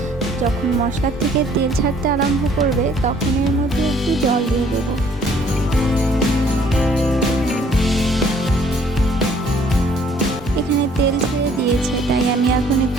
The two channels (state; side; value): normal; both; correlation 0.60